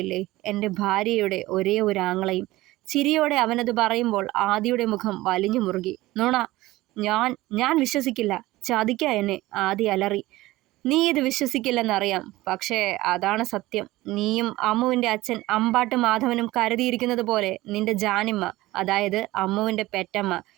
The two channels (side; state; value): left; quieter; 18.2 dB